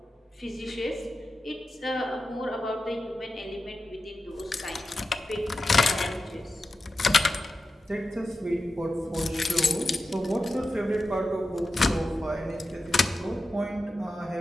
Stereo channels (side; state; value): both; normal; correlation 0.91